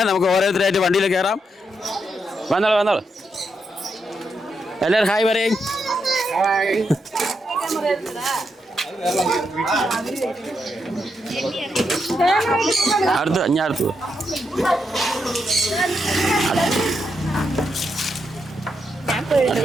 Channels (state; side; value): normal; both; correlation 0.82